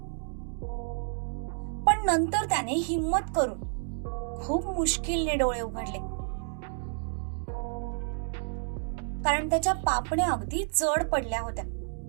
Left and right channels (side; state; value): left; silent; 58 dB below the other